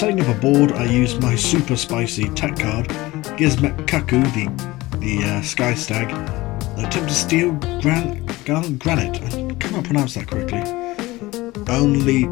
up a board, I used my super spicy tech card, Gizmet Kaku, the Sky Stag, and attempt to steal Gallant Granite. I cannot pronounce that correctly. Only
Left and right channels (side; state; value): right; quieter; 19.7 dB